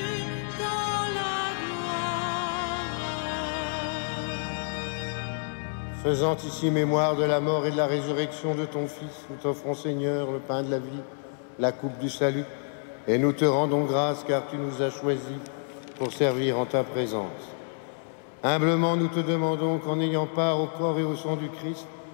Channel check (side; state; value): right; silent; 59 dB below the other